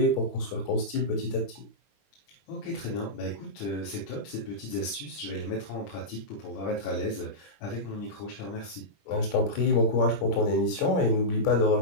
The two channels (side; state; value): right; late; 21 ms